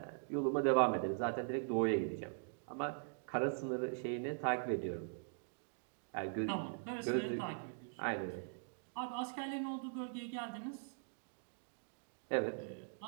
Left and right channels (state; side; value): silent; left; digital silence